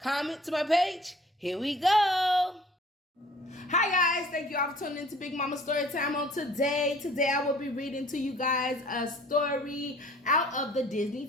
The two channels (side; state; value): both; normal; correlation 0.52